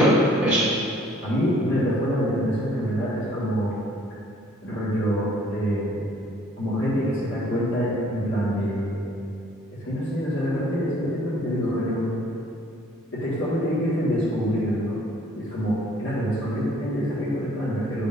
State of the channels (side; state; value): both; normal; correlation 0.59